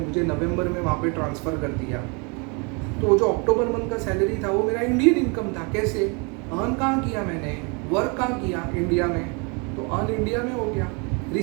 नवंबर में वहाँ पे ट्रांसफ़र कर दिया। तो जो अक्टूबर मंथ का सैलरी था वो मेरा इंडियन इनकम था। कैसे अर्न कहाँ किया मैंने? वर्क कहाँ किया? इंडिया में। तो अर्न इंडिया में हो गया।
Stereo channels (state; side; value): quieter; left; 32.4 dB